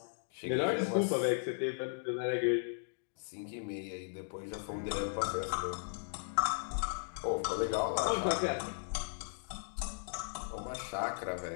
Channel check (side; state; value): right; silent; digital silence